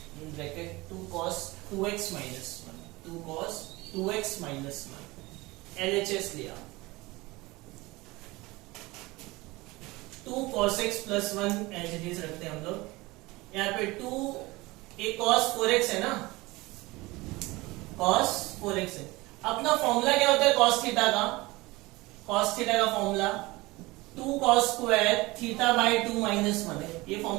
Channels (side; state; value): left; quieter; 21.7 dB